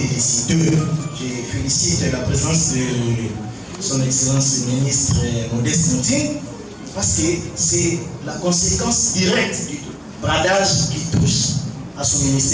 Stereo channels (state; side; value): identical; both; correlation 1.00